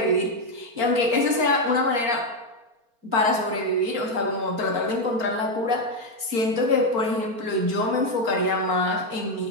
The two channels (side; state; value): left; late; 4.4 ms